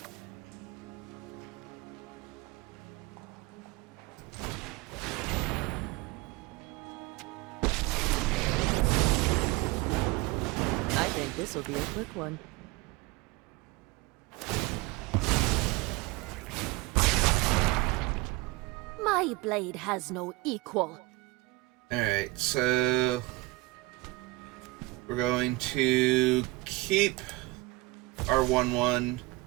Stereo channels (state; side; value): quieter; left; 22.1 dB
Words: I think this will be a quick one. My blade has no equal. Alright, so... we're going to keep our 1-1,